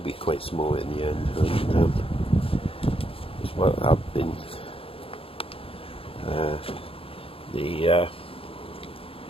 quite small in the end, and as well I've been the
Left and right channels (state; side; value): late; right; 0.27 ms